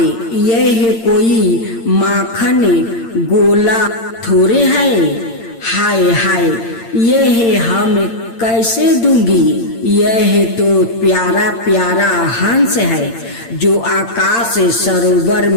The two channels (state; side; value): late; right; 8.8 ms